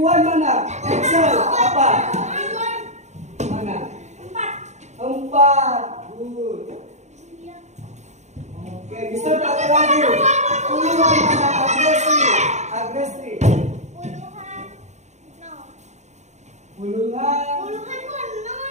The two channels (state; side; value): late; left; 0.33 ms